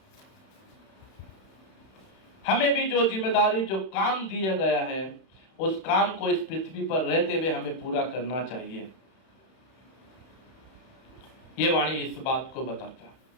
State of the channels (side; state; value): right; late; 31 ms